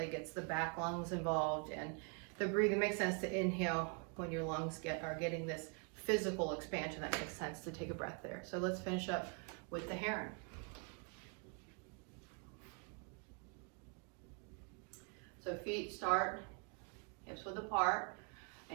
gets the back lungs involved. And the breathing makes sense to inhale when your lungs are getting this physical expansion. That makes sense to take a breath there. So let's finish up with the heron. So feet start hips width apart,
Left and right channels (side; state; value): left; quieter; 37.8 dB